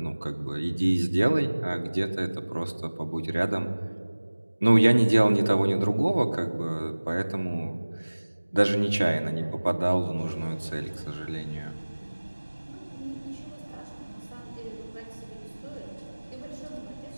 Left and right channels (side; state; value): both; inverted; correlation -1.00